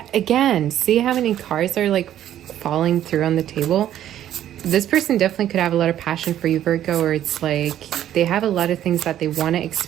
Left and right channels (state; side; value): quieter; left; 11.6 dB